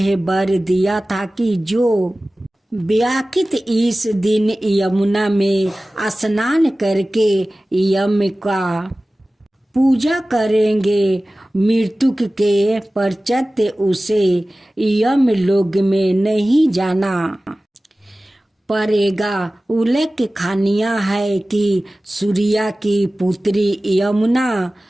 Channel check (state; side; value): normal; both; correlation 0.97